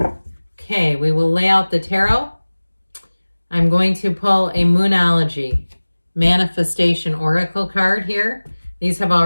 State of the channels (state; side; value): inverted; both; correlation -1.00